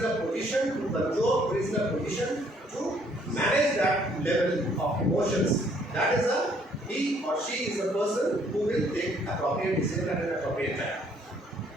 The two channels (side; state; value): both; normal; correlation 0.64